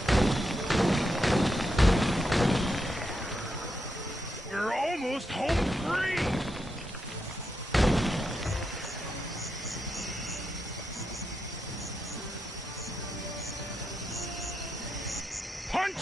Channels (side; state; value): both; normal; correlation 0.85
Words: We're almost home free!